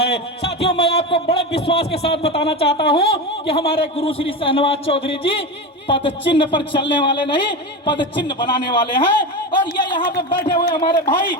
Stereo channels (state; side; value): normal; both; correlation 0.21